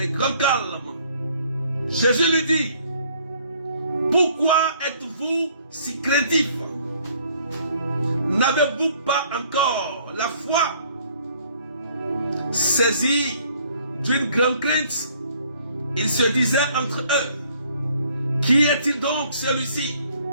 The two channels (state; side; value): inverted; both; correlation -0.61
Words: grand calme. Jésus lui dit, Pourquoi êtes-vous si craintifs? N'avez-vous pas encore la foi? Saisis d'une grande crainte, ils se disaient entre eux, qui est-il donc celui-ci,